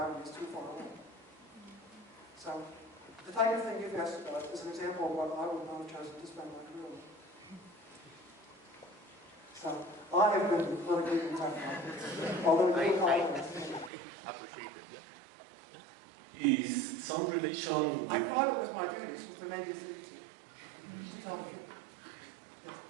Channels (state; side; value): drops out; left; at 13.9 s